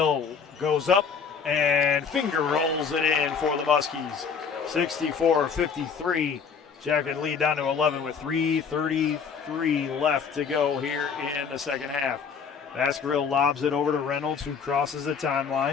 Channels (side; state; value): right; quieter; 6.2 dB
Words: goes up and finger rolls it in for the Muskies. 64-53. Jacket lead down to 11 with 3:33 left to go here in the second half. Baskerville lobs it over to Reynolds, who crosses the